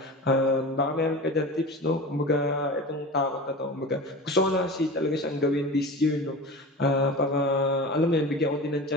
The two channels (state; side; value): normal; both; correlation 0.32